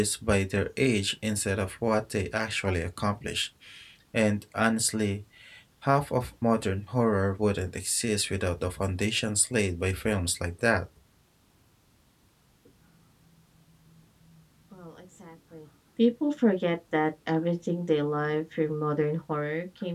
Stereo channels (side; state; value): both; identical; correlation 1.00